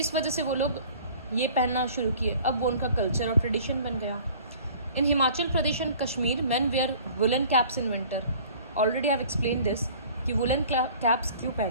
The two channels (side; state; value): both; inverted; correlation -0.49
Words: वजह से वो लोग ये पहनना शुरू किए। अब वो उनका कल्चर और ट्रेडिशन बन गया। In Himachal Pradesh and Kashmir men wear woollen caps in winter. Already I have explain this कि वुलन कैप्स क्यों